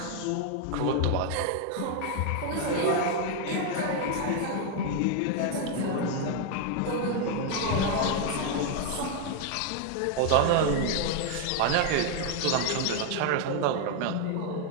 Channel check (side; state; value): both; different; correlation 0.00